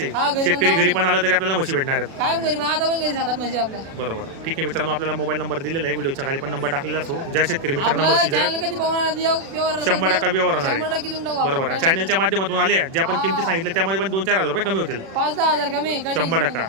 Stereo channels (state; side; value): late; left; 36 ms